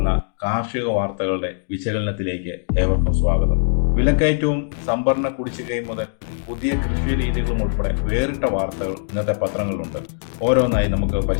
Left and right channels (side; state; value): right; silent; digital silence